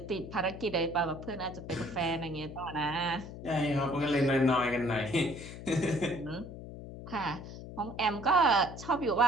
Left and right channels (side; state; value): left; noise; hum, 12 dB below the sound